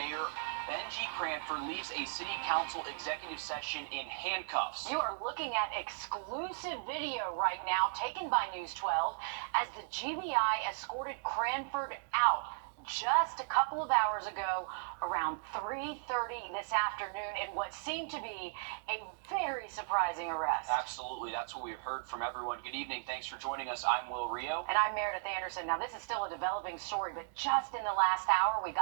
Benji Cranford leaves a city council executive session in handcuffs. You are looking at exclusive video right now taken by News 12 as the GBI escorted Cranford out just a couple of hours ago around 3:30 this afternoon in what seemed to be a very surprising arrest. Absolutely. That's what we've heard from everyone. Good evening. Thanks for joining us. I'm Wrdw. And I'm Meredith Anderson. Now, this is still a developing story, but just in the last hour, we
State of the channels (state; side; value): silent; left; digital silence